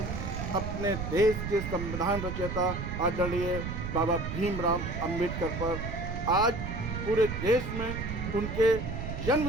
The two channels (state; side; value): noise; right; rumble, 5 dB below the sound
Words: अपने देश के संविधान रचयिता आदरणीय बाबा भीमराव अंबेडकर पर। आज पूरे देश में उनके जन्म